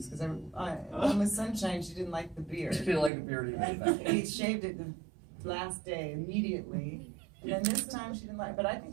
because on Miss Sunshine, she didn't like the beard. She didn't like the beard either. He shaved it the last day immediately, and then this time she didn't like. But I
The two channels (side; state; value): left; drops out; at 3.1 s